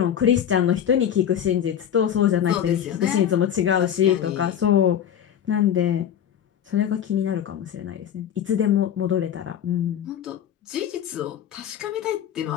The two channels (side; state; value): right; quieter; 9.6 dB